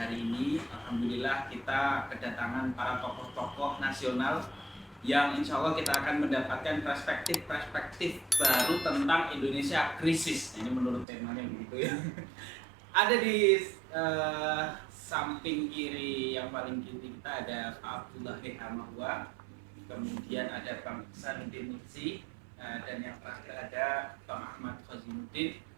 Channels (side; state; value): left; drops out; at 11.1 s